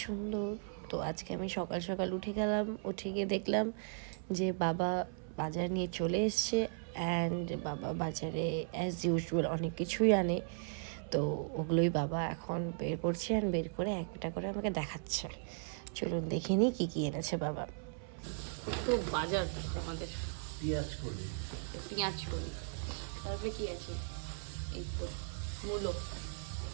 সুন্দর। তো আজকে আমি সকাল সকাল উঠে গেলাম, উঠে গিয়ে দেখলাম যে বাবা বাজার নিয়ে চলে এসছে। অ্যান্ড বাবা বাজারে অ্যাজ ইউজুয়াল অনেক কিছুই আনে। তো ওগুলোই বাবা এখন বের করছে, অ্যান্ড বের করে একটা করে আমাকে দেখাচ্ছে। চলুন দেখে নিই কী কী এনেছে বাবা। তো বাজার আমাদের পেঁয়াজ করি, তারপরে কি আছে? এই তো মূলো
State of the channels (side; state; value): left; silent; 53 dB below the other